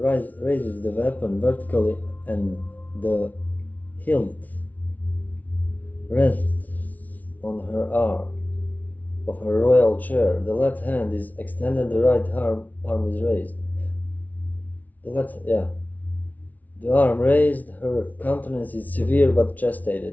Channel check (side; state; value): right; late; 0.075 ms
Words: raises the weapon vertically and the hilt rests on her arm of her royal chair. The left hand is extended, the right arm is raised. The arm raised, her countenance is severe but